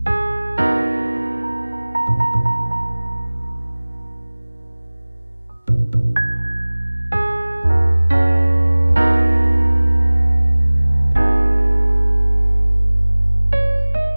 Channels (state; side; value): inverted; both; correlation -1.00